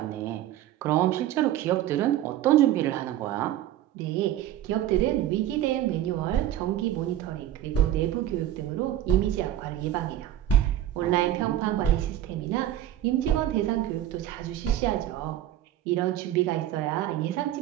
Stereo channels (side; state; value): left; quieter; 12.4 dB